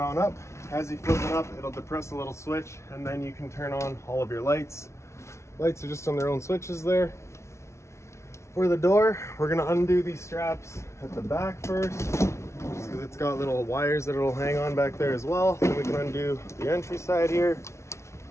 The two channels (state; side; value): late; right; 0.13 ms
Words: on up. As you flip it up, it'll depress a little switch and then you can turn on all of your lights. Lights are just on their own switches there. For the door, we're gonna undo these straps at the back first, just because it's got little wires that it'll hang on back there as well. Then we can undo the entry side here.